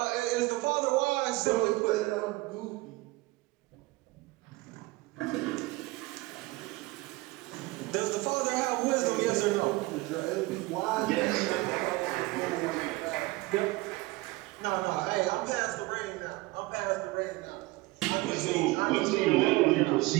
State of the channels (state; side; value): quieter; left; 21.2 dB